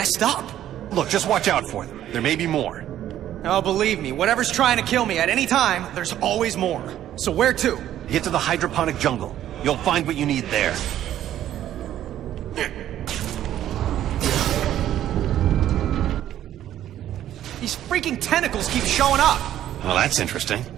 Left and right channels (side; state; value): left; quieter; 11.9 dB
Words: up. Look, just watch out for them. There may be more. Oh, believe me, whatever's trying to kill me at any time, there's always more. So where to? Get to the hydroponic jungle. You'll find what you need there. These freaking tentacles keep showing up. Well, that's interesting.